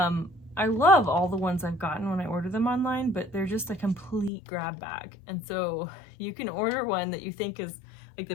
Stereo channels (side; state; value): right; drops out; at 4.3 s